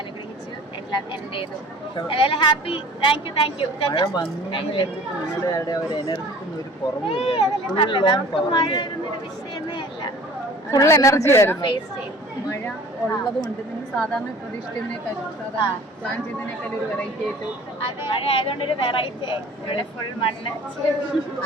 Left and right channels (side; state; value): both; normal; correlation 0.47